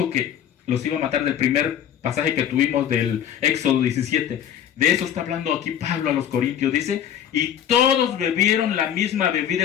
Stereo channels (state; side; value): quieter; right; 9.7 dB